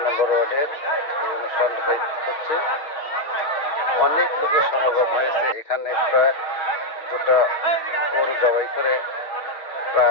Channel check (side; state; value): right; late; 6.3 ms